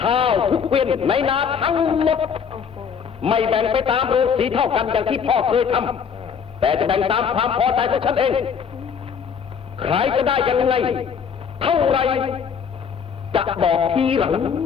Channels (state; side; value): quieter; right; 6.8 dB